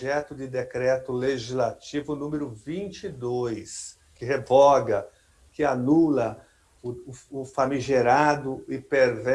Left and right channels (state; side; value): identical; both; correlation 1.00